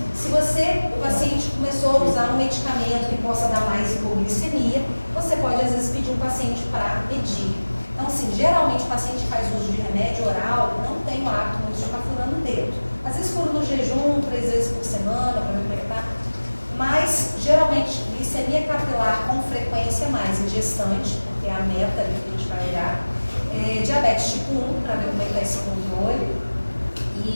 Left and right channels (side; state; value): both; inverted; correlation -1.00